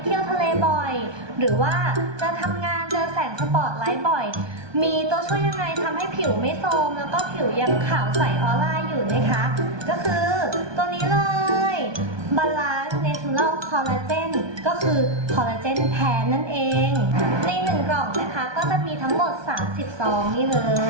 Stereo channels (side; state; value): left; late; 1.2 ms